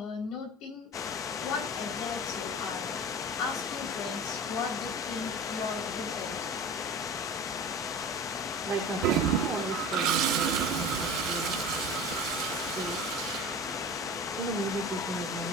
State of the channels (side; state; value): both; normal; correlation 0.35